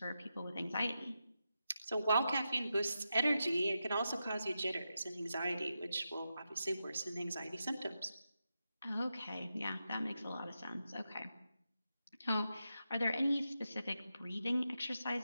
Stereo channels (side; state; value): both; inverted; correlation -0.88